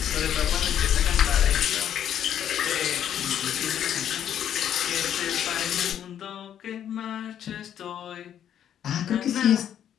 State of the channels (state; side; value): quieter; right; 9.9 dB